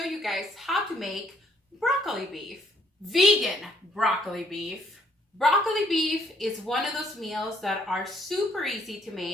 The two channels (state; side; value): normal; both; correlation 0.66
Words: you guys how to make broccoli beef. Vegan broccoli beef. Broccoli beef is one of those meals that are super easy to